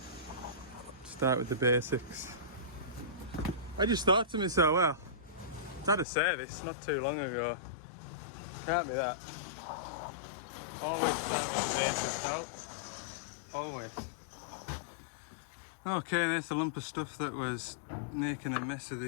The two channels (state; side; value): drops out; right; at 6.1 s